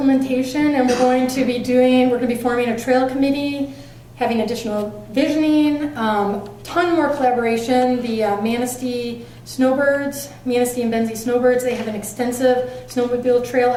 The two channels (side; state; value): both; identical; correlation 1.00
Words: and we're going to be forming a trail committee, having additional visioning, ton more collaboration. The Manistee Snowbirds, Manistee and Benzie Snowbirds, they have an extensive snowmobile trail